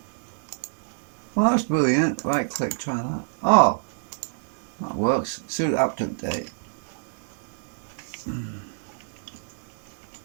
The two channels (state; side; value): silent; left; digital silence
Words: Well, that's brilliant. Right click, try that. Oh, that works. Sudo apt update.